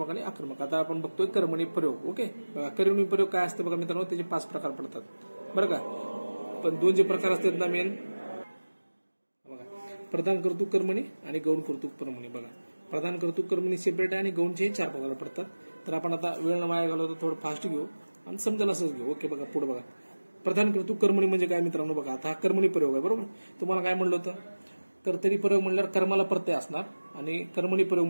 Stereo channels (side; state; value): both; inverted; correlation -1.00